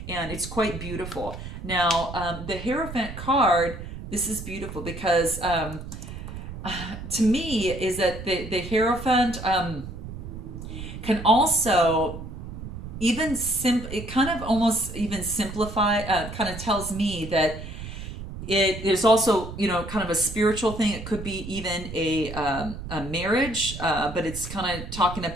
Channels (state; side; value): noise; right; rumble, 10 dB below the sound